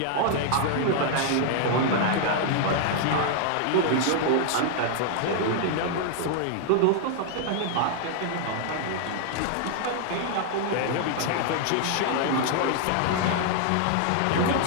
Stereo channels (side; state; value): both; different; correlation 0.00